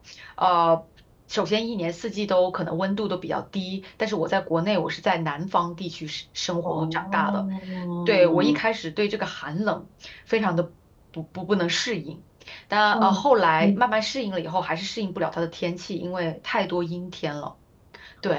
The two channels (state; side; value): identical; both; correlation 1.00